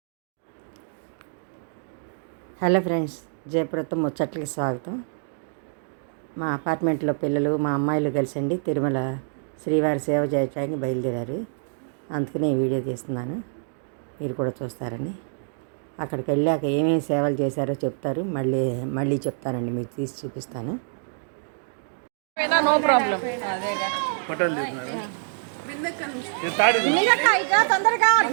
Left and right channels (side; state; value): left; silent; digital silence